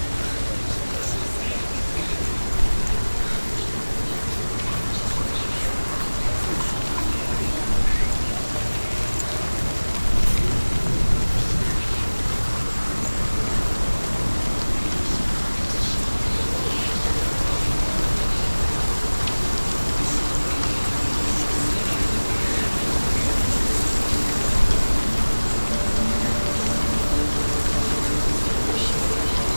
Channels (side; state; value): both; inverted; correlation -1.00